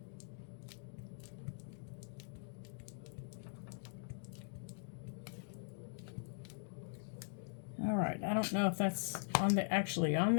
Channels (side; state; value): right; silent; digital silence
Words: All right, I don't know if that's actually on